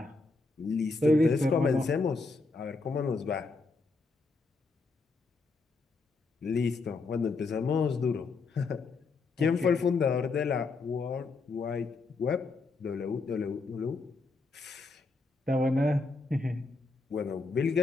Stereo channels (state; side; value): quieter; right; 3.8 dB